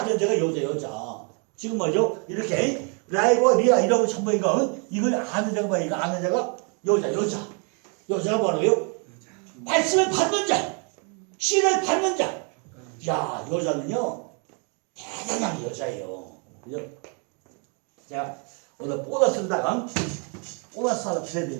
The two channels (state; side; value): quieter; left; 37.8 dB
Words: 자가 여자. 지금 뭐죠? 이렇게 라이브와 리아 이라고 전부니까 이걸 아는 자가 뭐야? 이거 아는 자가 여자. 여자가 뭐라고요? 말씀을 받는 자, 씨를 받는 자. 야, 여자는요 대단한 여자예요. 그죠? 자, 오늘 보너스로다가 보너스 하나 드려야